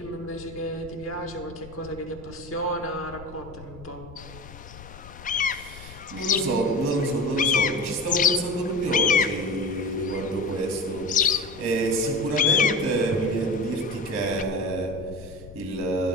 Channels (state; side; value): noise; left; rumble, 17 dB below the sound